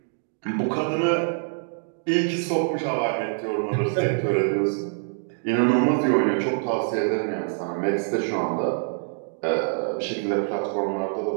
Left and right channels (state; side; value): silent; left; digital silence